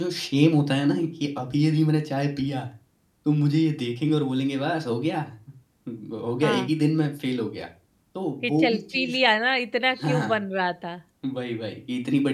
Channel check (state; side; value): identical; both; correlation 1.00